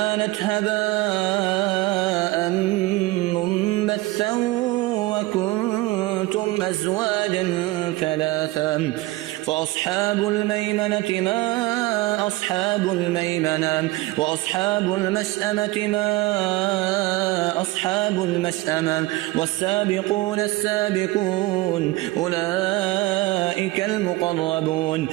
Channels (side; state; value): left; quieter; 20.2 dB